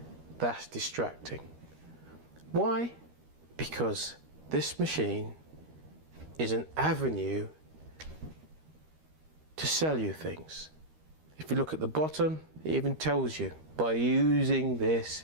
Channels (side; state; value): left; late; 13 ms